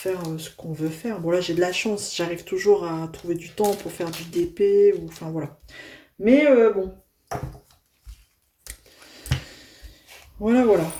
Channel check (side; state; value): both; identical; correlation 1.00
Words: ce qu'on veut faire. Bon là j'ai de la chance, j'arrive toujours à trouver du temps pour faire du DP ou enfin voilà. Mais bon. Voilà.